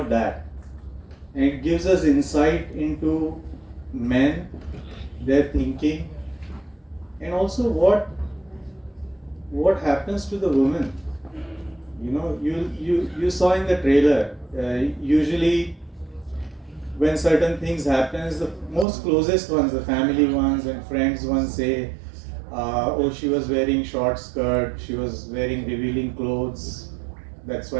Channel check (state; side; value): drops out; left; at 18.9 s